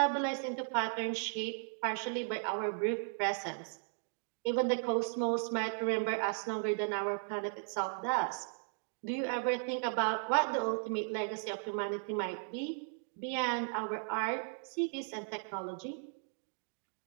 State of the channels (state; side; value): silent; left; 54 dB below the other